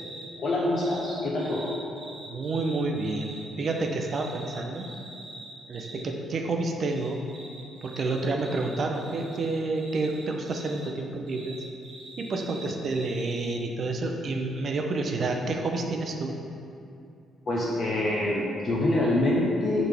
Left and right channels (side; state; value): both; normal; correlation 0.73